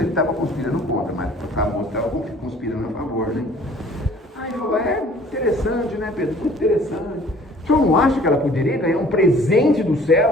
estava conspirando contra, mas para a moça estava conspirando a favor, né? Aí ele falou, interessante, né, Pedro? Muito interessante. O senhor não acha que ela poderia ganhar um presente dos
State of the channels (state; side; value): normal; both; correlation 0.53